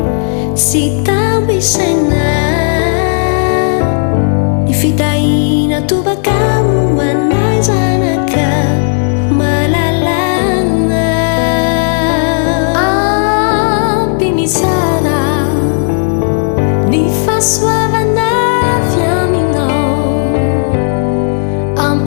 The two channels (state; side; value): silent; right; 70 dB below the other